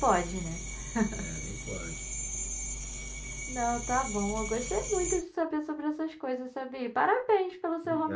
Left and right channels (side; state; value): both; identical; correlation 1.00